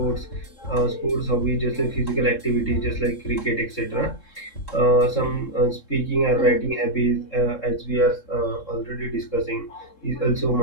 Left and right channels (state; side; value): late; right; 3.7 ms